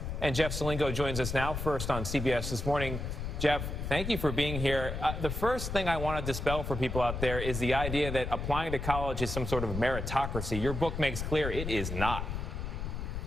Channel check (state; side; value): noise; left; rumble, 4 dB below the sound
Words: And Jeff Salingo joins us now, first on CBS This Morning. Jeff, thank you for being here. The first thing I want to dispel for people out there is the idea that applying to college is some sort of meritocracy. Your book makes clear it is not.